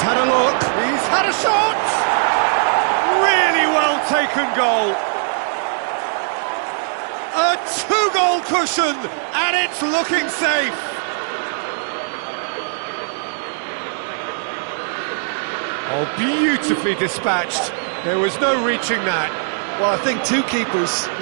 had a look. He's had a shot! Really well taken goal. A two-goal cushion, and it's looking safe. Oh, beautifully dispatched. There was no reaching that. Well, I think two keepers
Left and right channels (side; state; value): left; silent; digital silence